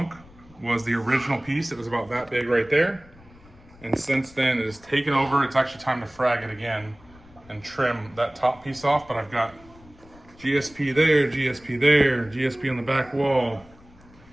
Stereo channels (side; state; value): left; noise; rumble, 25 dB below the sound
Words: was the original piece. It was about that big right there. And since then it has taken over. It's actually time to frag it again and trim that top piece off. But I've got GSP there, GSP there, GSP on the back wall,